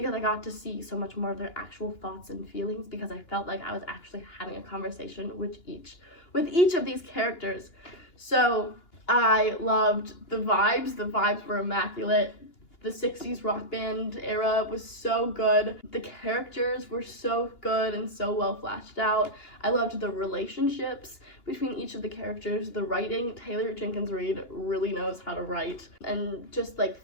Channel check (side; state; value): right; late; 2.9 ms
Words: I got to see so much more of their actual thoughts and feelings, because I felt like I was actually having a conversation with each of these characters. So I loved the vibes. The vibes were immaculate. The 60s rock band era was so good. The characters were so good and so well fleshed out. I loved the relationships between each of the characters. The writing, Taylor Jenkins Reid really knows how to write, and just like